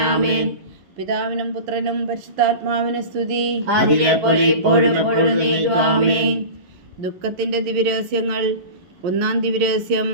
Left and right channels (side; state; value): left; late; 11 ms